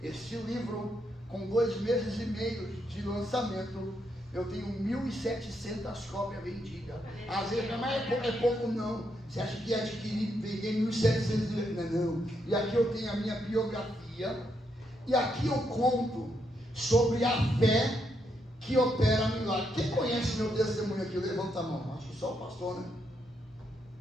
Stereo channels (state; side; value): normal; both; correlation 0.79